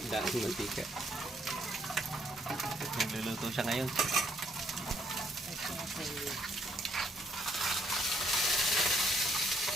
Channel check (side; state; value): both; normal; correlation 0.68